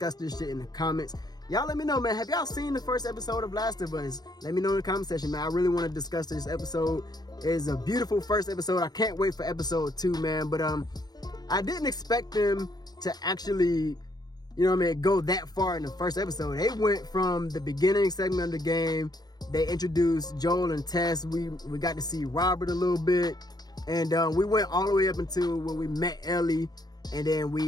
this shit in the comments. Y'all let me know, man. Have y'all seen the first episode of Last of Us? Let me know in the comment section, man. I really want to discuss this episode. It is a beautiful first episode. I can't wait for episode 2, man. But I didn't expect them to actually, you know what I mean, go that far in the first episode. They went from the beginning segment of the game. They introduced Joel and Tess. We got to see Robert a little bit. And we went all the way up until when we met Ellie. And then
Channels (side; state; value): right; late; 0.19 ms